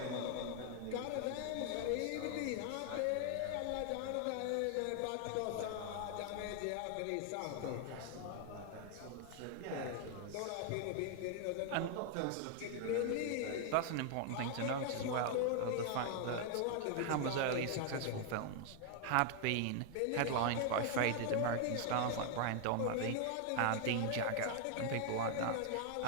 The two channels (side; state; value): both; different; correlation 0.00